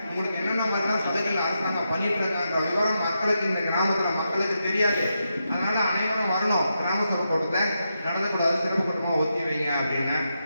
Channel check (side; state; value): both; inverted; correlation -0.85